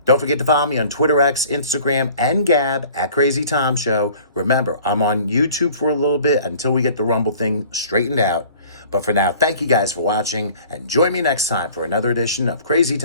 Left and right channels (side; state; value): both; inverted; correlation -0.49